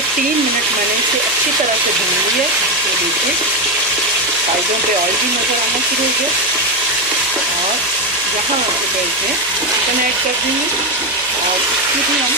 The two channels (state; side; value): noise; right; hum, 26 dB below the sound